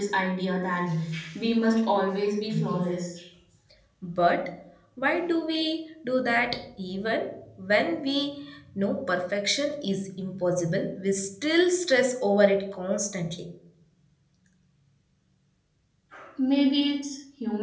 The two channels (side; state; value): both; identical; correlation 1.00